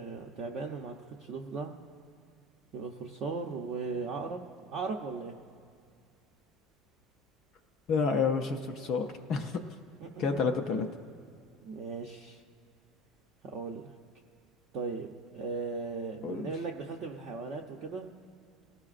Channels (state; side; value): normal; both; correlation 0.36